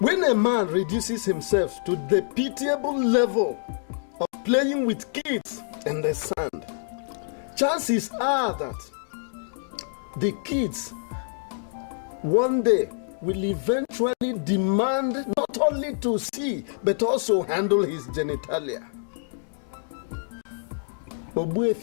a man reduces himself to the pitiable level of playing with kids in the sand, chances are that the kids one day will eventually demand not only to see but also handle his genitalia.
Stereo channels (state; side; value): silent; right; digital silence